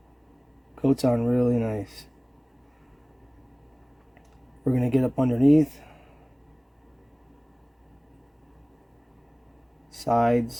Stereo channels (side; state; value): both; identical; correlation 1.00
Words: Coats on really nice. We're going to get up underneath,